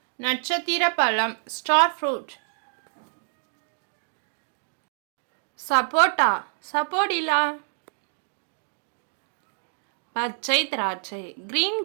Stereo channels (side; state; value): left; silent; digital silence